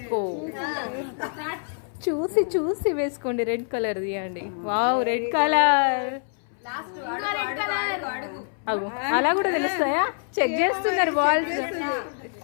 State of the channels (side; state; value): right; silent; 61 dB below the other